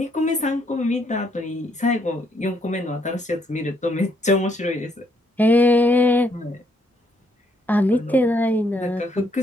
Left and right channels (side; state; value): both; normal; correlation 0.71